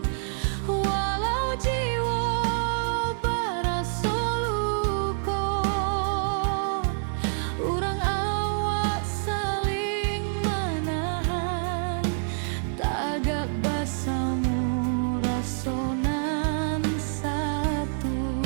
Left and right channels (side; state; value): left; silent; 60 dB below the other